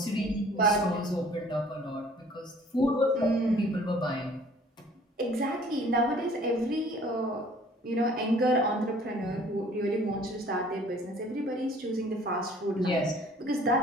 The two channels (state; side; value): normal; both; correlation 0.53